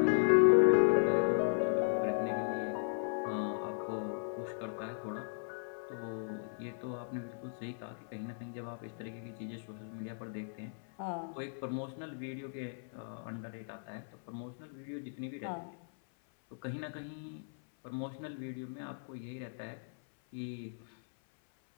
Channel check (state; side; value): silent; right; 53 dB below the other